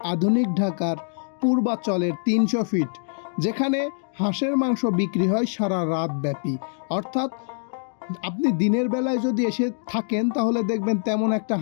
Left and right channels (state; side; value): silent; right; digital silence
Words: আধুনিক ঢাকার পূর্বাচলের 300 ফিট, যেখানে হাঁসের মাংস বিক্রি হয় সারা রাত ব্যাপী। অর্থাৎ আপনি দিনের বেলায় যদি এসে থাকেন তাহলে দেখবেন তেমন একটা